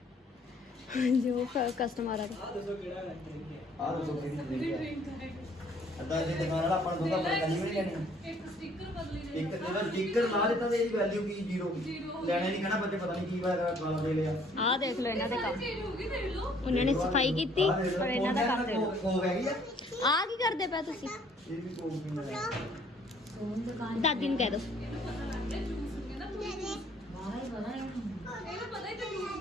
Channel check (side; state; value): both; normal; correlation 0.60